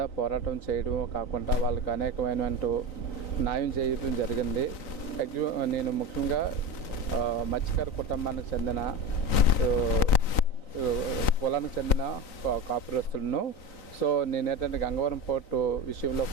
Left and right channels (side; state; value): right; late; 3.9 ms